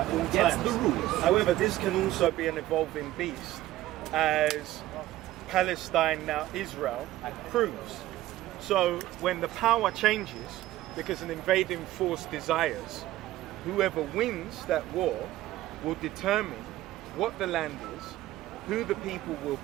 all Gets times. the rules. However, this can also be an evolving beast, as Palestine, now Israel, proves. So when the power changes, because an invading force desires, whoever wins that war will determine what the land is, who the people will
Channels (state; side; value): quieter; left; 15.3 dB